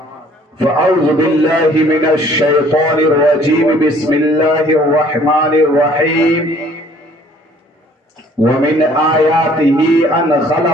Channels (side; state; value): both; normal; correlation 0.57